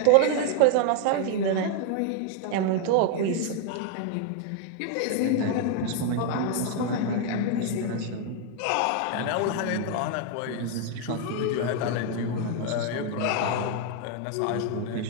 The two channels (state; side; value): different; both; correlation 0.00